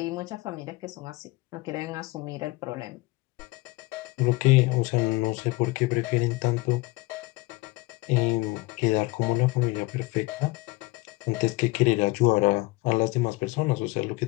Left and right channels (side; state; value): right; quieter; 22.5 dB